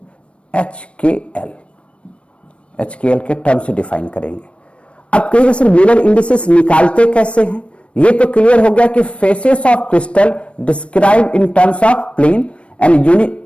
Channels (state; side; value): late; right; 0.060 ms